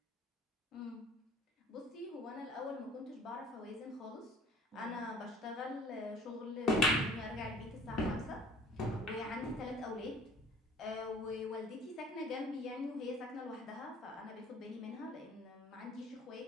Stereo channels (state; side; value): normal; both; correlation 0.51